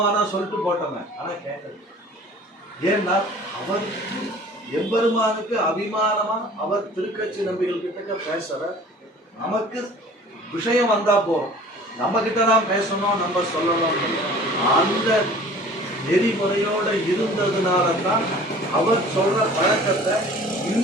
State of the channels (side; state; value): both; normal; correlation 0.47